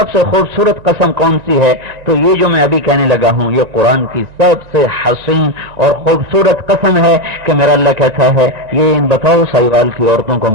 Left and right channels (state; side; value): late; left; 1.9 ms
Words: سے خوبصورت قسم کون سی ہے، تو یہ جو میں ابھی کہنے لگا ہوں یہ قرآن کی سب سے حسین اور خوبصورت قسم ہے کہ میرا اللہ کہتا ہے یہ ان بتاؤ سائیوال کی عورتوں کو